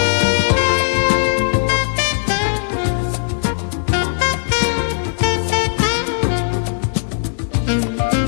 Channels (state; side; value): silent; right; digital silence